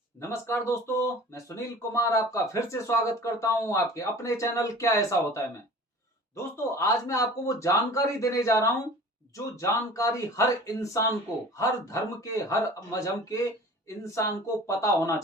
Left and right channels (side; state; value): both; normal; correlation 0.42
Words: नमस्कार दोस्तों, मैं सुनील कुमार आपका फिर से स्वागत करता हूं आपके अपने चैनल क्या ऐसा होता है में। दोस्तों, आज मैं आपको वो जानकारी देने जा रहा हूं जो जानकारी हर इंसान को, हर धर्म के, हर मजहब के इंसान को पता होना